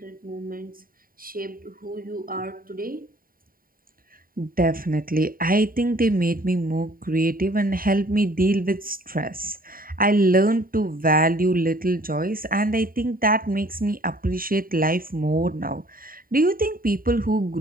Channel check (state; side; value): late; left; 0.41 ms